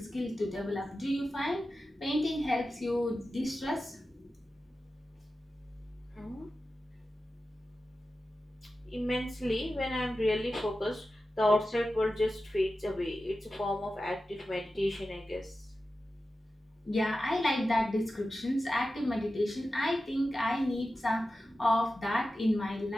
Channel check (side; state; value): both; normal; correlation 0.93